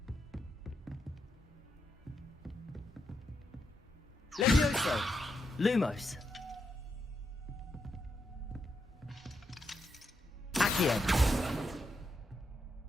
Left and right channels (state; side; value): normal; both; correlation 0.82